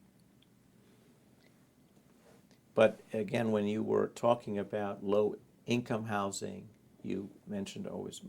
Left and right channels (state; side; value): identical; both; correlation 1.00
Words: But again, when you were talking about low-income housing, you mentioned always